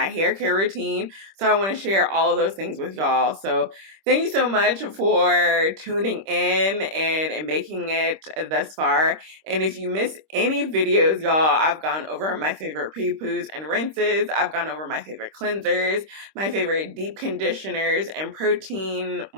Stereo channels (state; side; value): late; left; 26 ms